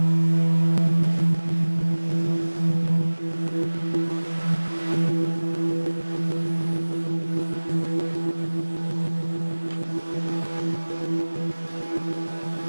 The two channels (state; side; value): inverted; both; correlation -1.00